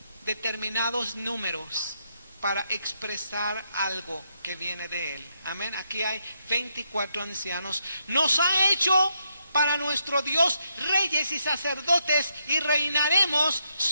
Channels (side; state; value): both; inverted; correlation -0.79